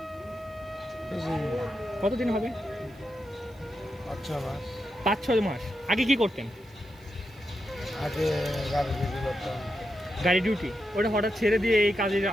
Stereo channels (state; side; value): noise; right; hiss, 30 dB below the sound